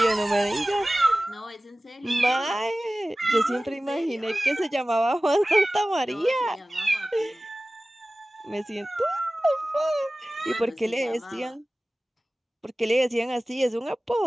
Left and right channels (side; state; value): both; normal; correlation 0.97